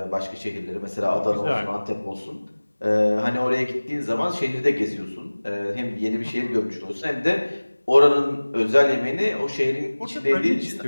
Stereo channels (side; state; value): both; inverted; correlation -1.00